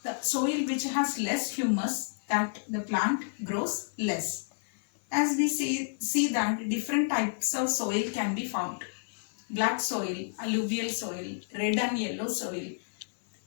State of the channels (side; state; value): right; silent; 58 dB below the other